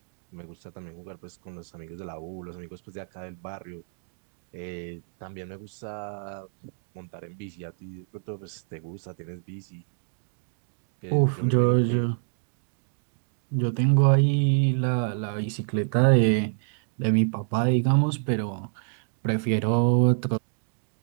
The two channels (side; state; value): left; silent; digital silence